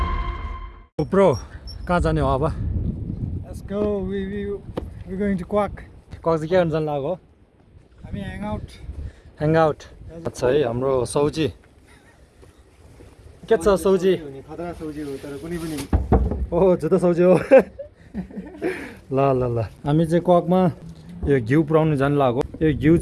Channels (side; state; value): both; identical; correlation 1.00